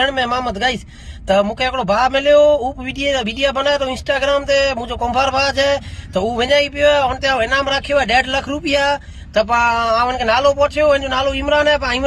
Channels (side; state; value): both; identical; correlation 1.00